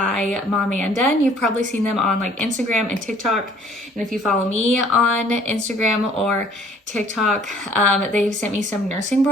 Momanda, and you've probably seen them on like Instagram and TikTok. And if you follow me on Instagram or TikTok, they've sent me some nursing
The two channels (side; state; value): both; normal; correlation 0.57